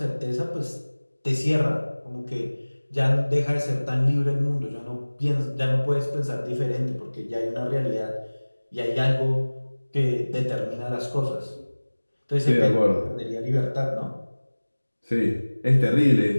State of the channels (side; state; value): both; inverted; correlation -1.00